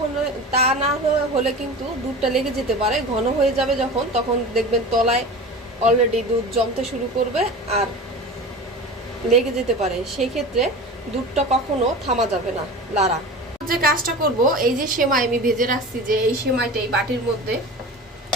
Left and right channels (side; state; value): both; normal; correlation 0.33